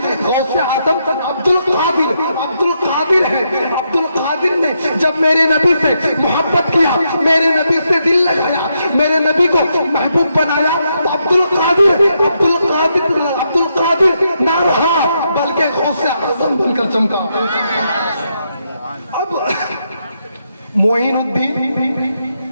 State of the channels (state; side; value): inverted; both; correlation -0.80